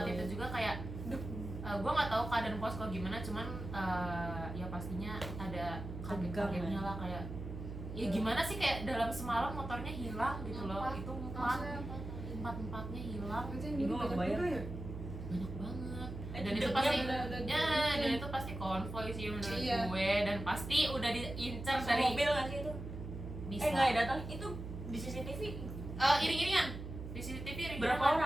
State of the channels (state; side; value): noise; right; hum, 8 dB below the sound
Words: itu juga kayak gue nggak tahu keadaan posko gimana, cuman ya pastinya ada kaget-kagetnya lah, kayak ya gimana sih kayak dalam semalam motornya hilang gitu loh. Itu empatnya hilang. Itu yang Ibu dulu nggak banyak kebayang. juga ya? banyak banget. Dan itu Hidupnya pasti udah ya, dan itu pasti konvoy sih menurut Iya. gue, dan pasti udah diincar Sama dari mobil nggak sih itu? bisa. Nggak ya, datang itu di CCTV. Iring-iringan di CCTV Berapa